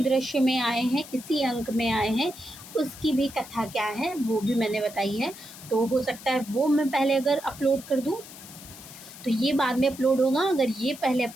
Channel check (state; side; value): noise; left; hiss, 16 dB below the sound